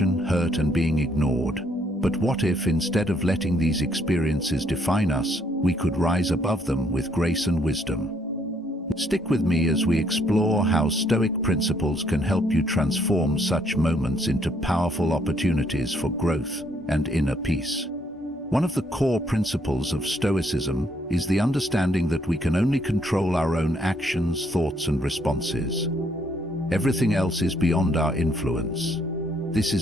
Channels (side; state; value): both; normal; correlation 0.69